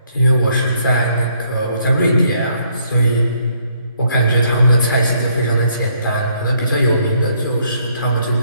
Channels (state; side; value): inverted; both; correlation -0.69